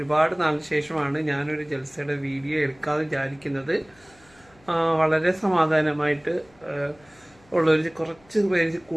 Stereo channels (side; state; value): left; noise; hum, 29 dB below the sound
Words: നാളിന് ശേഷമാണ് ഞാനൊരു ജൽസയുടെ വീഡിയോ എടുക്കാതെ വിചാരിക്കുന്നത്. വളരെ സമാധാനമായിട്ട് ഉള്ളൊരു കുറച്ച് പേര്